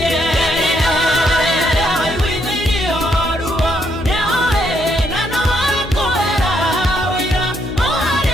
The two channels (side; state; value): left; noise; hum, 10 dB below the sound